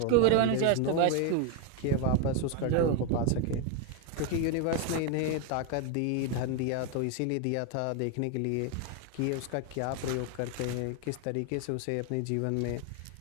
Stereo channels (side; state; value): both; different; correlation 0.01